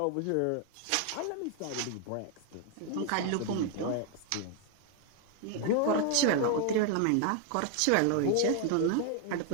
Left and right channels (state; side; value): different; both; correlation 0.00